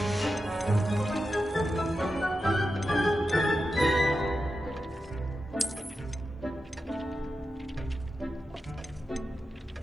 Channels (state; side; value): normal; both; correlation 0.90